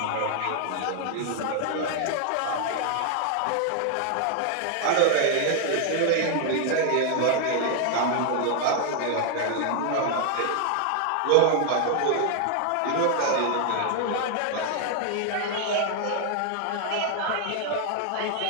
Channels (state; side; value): different; both; correlation 0.00